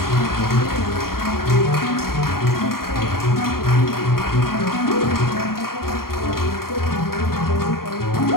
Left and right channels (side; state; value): right; late; 0.93 ms